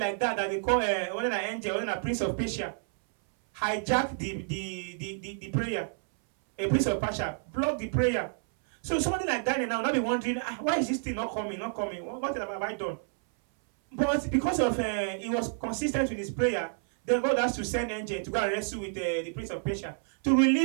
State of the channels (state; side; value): silent; left; 58 dB below the other